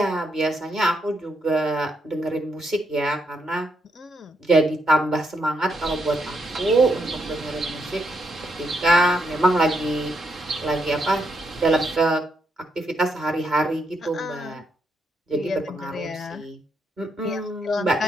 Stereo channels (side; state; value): both; normal; correlation 0.78